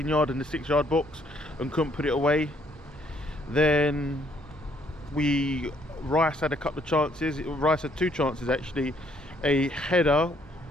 and the 6-yard box and couldn't put it away. Then Rice had a couple of chances. Rice had two chances actually, a header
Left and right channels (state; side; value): normal; both; correlation 0.67